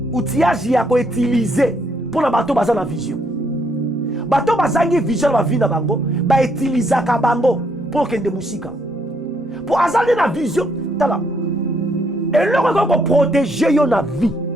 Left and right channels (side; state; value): both; normal; correlation 0.72